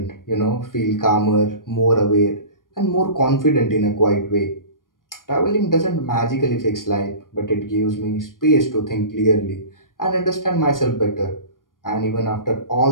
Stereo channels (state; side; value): late; right; 0.90 ms